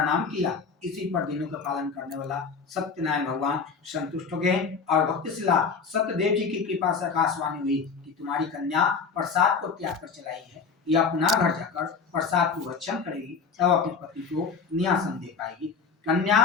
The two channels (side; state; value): right; quieter; 5.4 dB